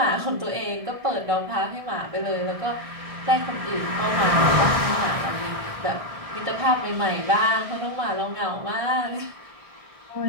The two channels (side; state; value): left; late; 1.6 ms